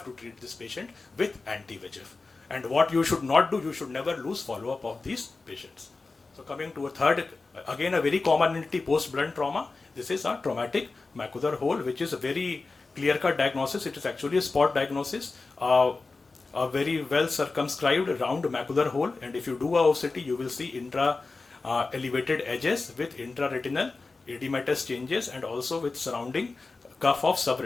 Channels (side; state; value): right; quieter; 3.8 dB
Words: to treat this patient with anti-VEGF. And what you should not do, you should never lose follow-up of these patients. So coming to a third, again a very common entity post-blunt trauma. This is a traumatic macular hole, which is a very clear-cut diagnosis. It is actually a spot diagnosis. a very well circumscribed round macular hole, and if you do a OCT, you will see intra elevated edges with intraretinal edematous changes and also with surrounding cuff of